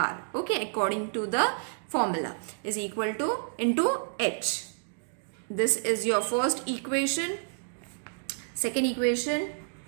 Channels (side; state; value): left; silent; digital silence